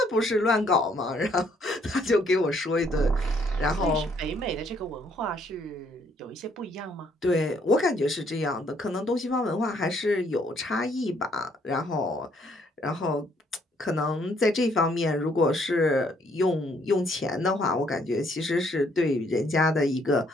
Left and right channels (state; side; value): normal; both; correlation 0.67